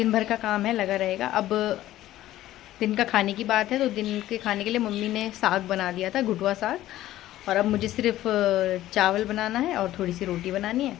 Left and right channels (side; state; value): right; quieter; 14.4 dB